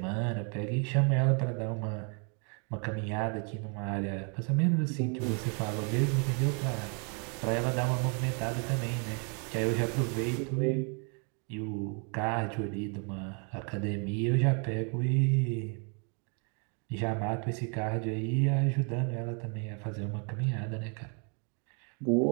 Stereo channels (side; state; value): left; quieter; 38.2 dB